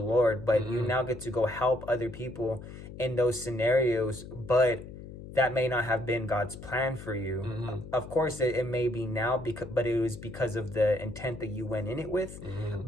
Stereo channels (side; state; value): left; noise; hum, 13 dB below the sound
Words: Lord, but you now get to go help other people in those scenarios, but that may not have been God's plan for you. Of course, it may be now, but it was because of the intent that you went in it with.